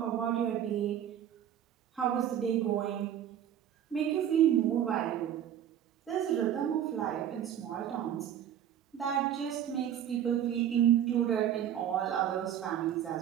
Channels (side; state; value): left; quieter; 10.2 dB